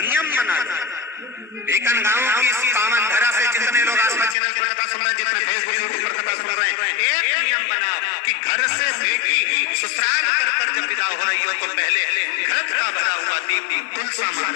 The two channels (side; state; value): right; drops out; at 4.4 s